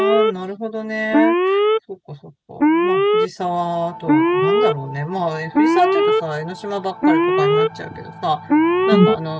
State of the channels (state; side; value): identical; both; correlation 1.00